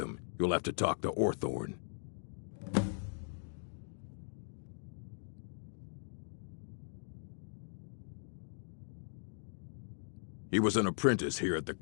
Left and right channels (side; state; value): right; silent; digital silence